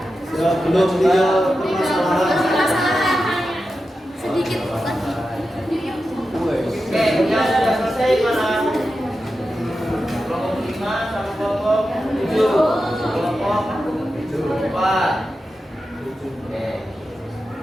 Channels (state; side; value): normal; both; correlation 0.91